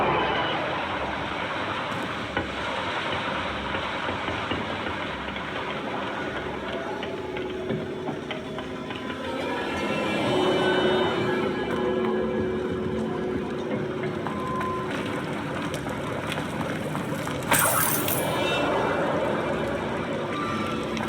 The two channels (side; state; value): both; identical; correlation 1.00